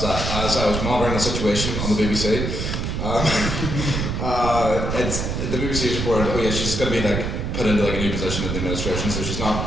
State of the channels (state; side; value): noise; right; rumble, 2 dB below the sound